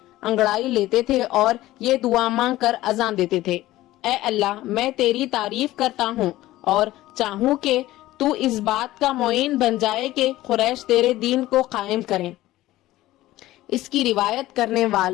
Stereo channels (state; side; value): quieter; right; 16.2 dB